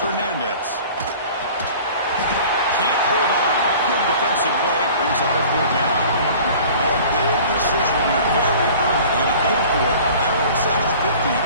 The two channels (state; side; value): inverted; both; correlation -0.45